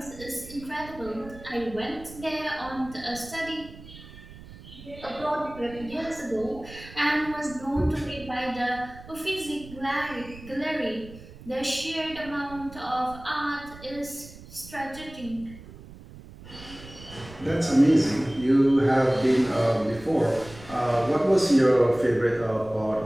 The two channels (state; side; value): noise; right; rumble, 17 dB below the sound